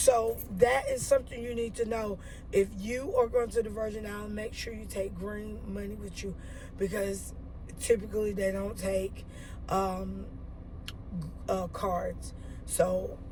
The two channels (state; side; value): identical; both; correlation 1.00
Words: that is something you need to know. If you are going to the Virgin Islands, make sure you take green money with you, because typically they don't take cards. So